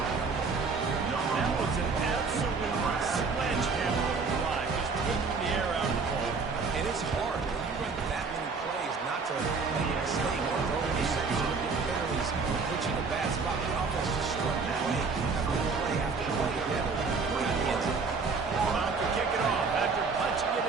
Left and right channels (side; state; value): left; quieter; 4.6 dB